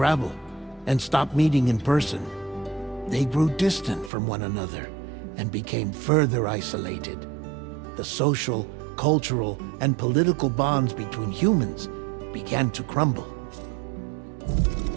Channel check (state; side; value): drops out; left; at 4.1 s